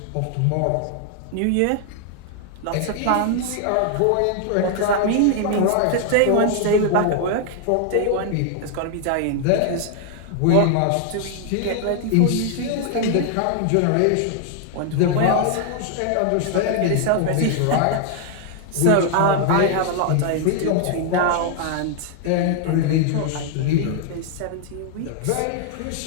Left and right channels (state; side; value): different; both; correlation 0.00